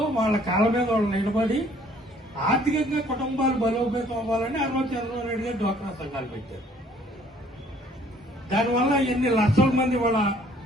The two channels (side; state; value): both; normal; correlation 0.59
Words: వాళ్ళ కాళ్ళ మీద వాళ్ళు నిలబడి ఆర్థికంగా కుటుంబాలు బలోపేతం అవ్వాలని చంద్రబాబు నాయుడు గారు డ్వాక్రా సంఘాలు పెట్టారు. దానివల్ల ఎన్ని లక్షల మంది